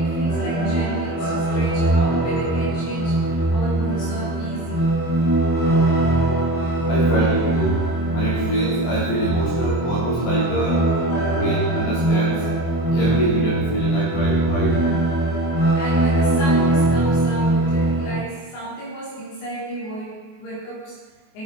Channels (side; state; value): right; late; 24 ms